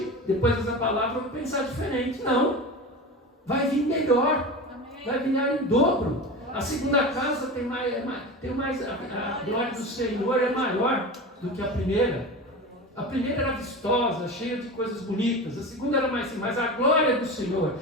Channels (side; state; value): both; normal; correlation 0.28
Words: depois dessa palavra, eu vou pensar diferente. Não, vai vir melhor, vai vir em dobro. A segunda casa tem mais a glória do Senhor é maior do que a primeira. A primeira era vistosa, cheia de coisas bonitas. A segunda era mais, mas a glória do Senhor